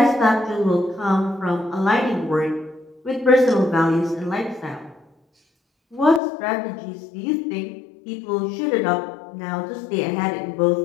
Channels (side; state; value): right; drops out; at 6.2 s